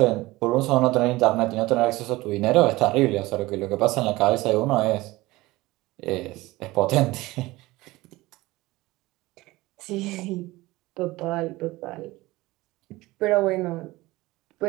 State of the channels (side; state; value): left; quieter; 19.6 dB